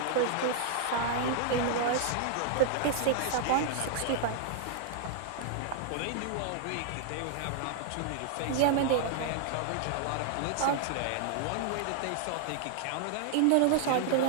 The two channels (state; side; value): different; both; correlation -0.01